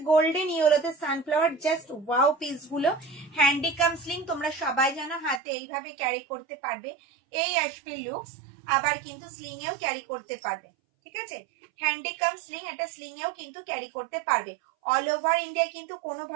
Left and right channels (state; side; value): drops out; left; at 5.4 s